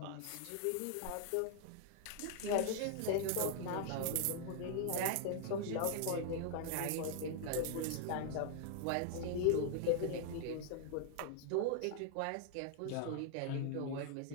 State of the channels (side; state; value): both; different; correlation 0.00